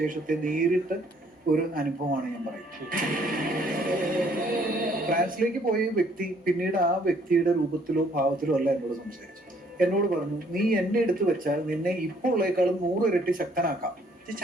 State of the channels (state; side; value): normal; both; correlation 0.63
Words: നേരിട്ട് ഒരു അനുഭവമാണ് ഞാൻ പറയുന്നത്. ഫ്രാൻസിലേക്ക് പോയ വ്യക്തി പിന്നീട് ആ വ്യക്തിയുടെ രൂപത്തിലോ ഭാവത്തിലോ അല്ല എന്നോട് സംസാരിച്ചു. എന്നോട് പറഞ്ഞു, നീ എന്നെ എടുത്തു വെച്ചാൽ നിന്നെ ഇപ്പോൾ ഉള്ളേക്കാളും 100 ഇരട്ടി ശക്തനാക്കാം.